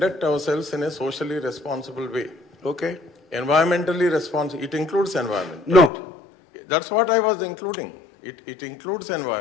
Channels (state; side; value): drops out; right; at 5.9 s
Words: ourselves in a socially responsible way. Okay. Environmentally responsible. It includes environment. No. Right? That's what I was including. It includes